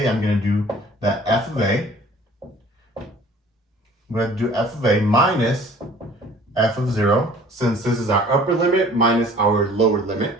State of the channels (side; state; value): both; normal; correlation 0.51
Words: I'm going to do that f of a. I'm going to do f of a minus f of 0, since this is our upper limit minus our lower limit.